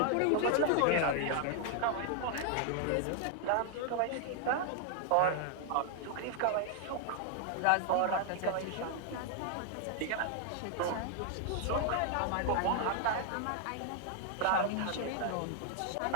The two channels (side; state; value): both; different; correlation 0.00